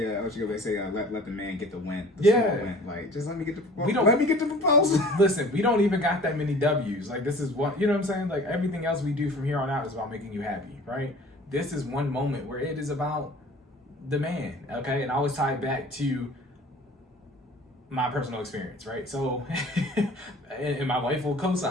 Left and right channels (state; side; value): normal; both; correlation 0.46